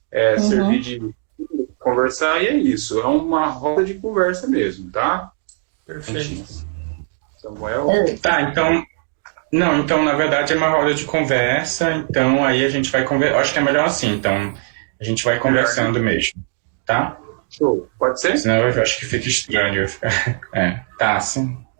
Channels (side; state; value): left; silent; digital silence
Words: servir de conversar, e é isso, é uma roda de conversa mesmo, tá? Perfeito. Samuel? Tá, então... Não, então, na verdade, é uma roda de conversa, então aí a gente vai conversar. Acho que é melhor assim, então a gente vai conversando mesmo, tá? Show, pode ser? Senão eu acho que fica estranho. Tá, sim.